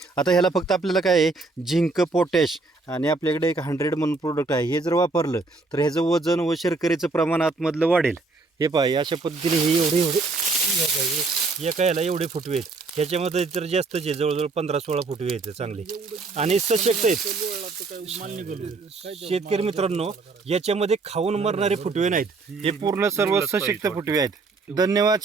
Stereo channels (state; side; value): quieter; left; 3.8 dB